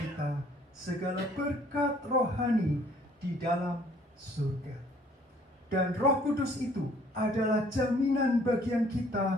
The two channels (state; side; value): normal; both; correlation 0.58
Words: segala berkat rohani di dalam surga. Dan Roh Kudus itu adalah jaminan bagian